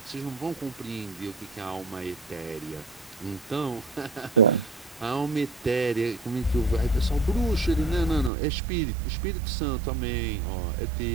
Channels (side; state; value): left; drops out; at 8.3 s